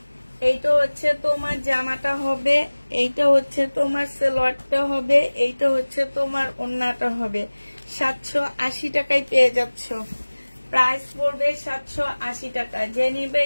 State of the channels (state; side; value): inverted; both; correlation -1.00